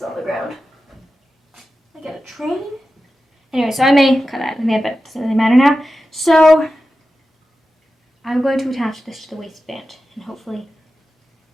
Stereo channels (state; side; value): normal; both; correlation 0.92